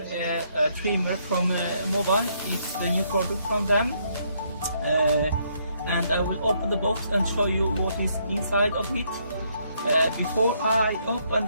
trimmer from MOVA. It's a new product from them. And I will open the box and show you what is inside of it. Before I open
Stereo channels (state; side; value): inverted; both; correlation -0.72